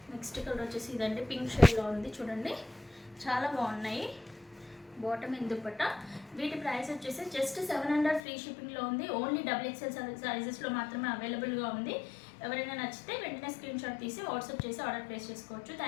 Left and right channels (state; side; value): drops out; right; at 8.2 s